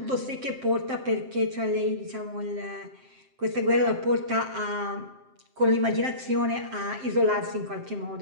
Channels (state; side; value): late; left; 7.6 ms